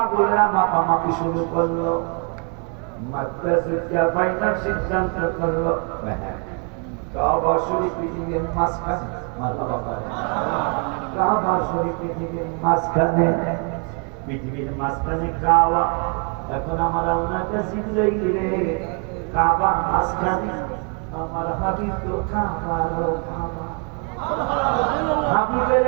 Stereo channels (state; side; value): quieter; left; 37.3 dB